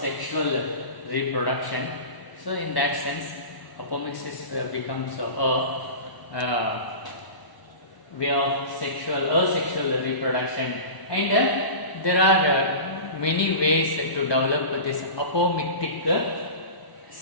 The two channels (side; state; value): right; late; 1.0 ms